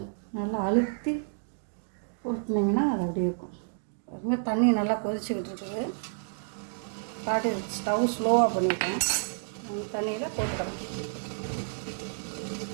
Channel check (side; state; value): left; silent; digital silence